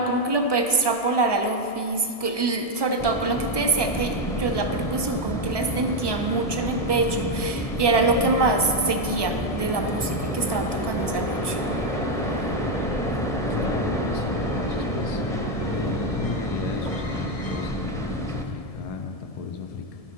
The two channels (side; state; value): right; late; 1.7 ms